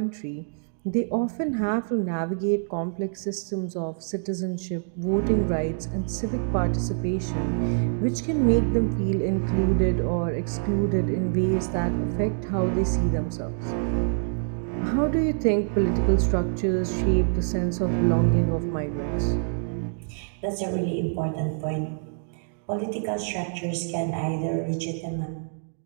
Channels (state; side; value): silent; left; digital silence